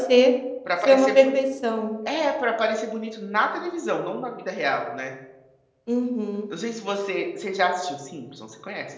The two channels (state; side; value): identical; both; correlation 1.00